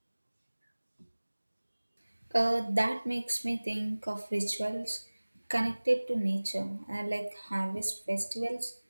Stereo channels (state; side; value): inverted; both; correlation -1.00